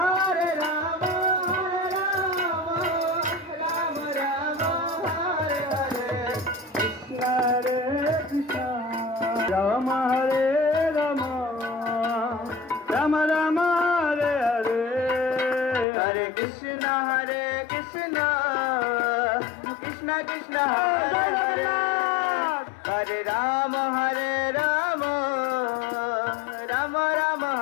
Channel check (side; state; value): right; drops out; at 15.9 s